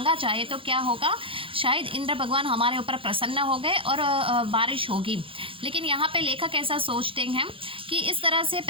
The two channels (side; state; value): left; late; 0.26 ms